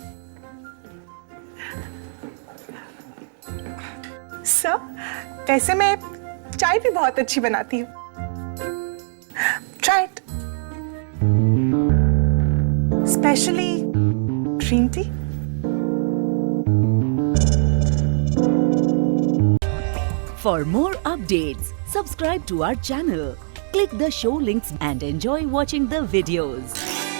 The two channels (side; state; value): left; silent; 64 dB below the other